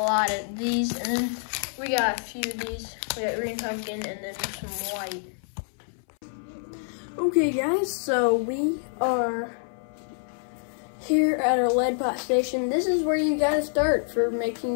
of these, and then we got a few of these. We got green pumpkin and then some white. Okay guys, so we are here at our lead pot station. This is where you gotta start for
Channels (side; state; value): right; silent; 60 dB below the other